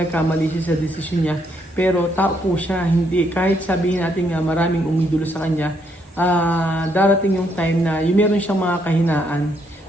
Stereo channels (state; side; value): normal; both; correlation 0.73